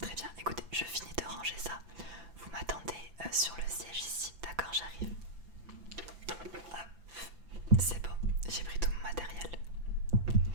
bien, écoutez, je finis de ranger ça. Vous m'attendez sur le siège ici, d'accord, j'arrive. Hop, c'est bon, j'ai pris tout mon matériel.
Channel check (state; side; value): late; left; 5.9 ms